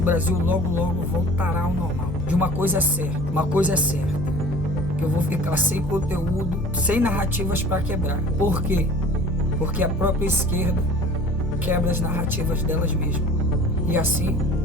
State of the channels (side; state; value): both; normal; correlation 0.45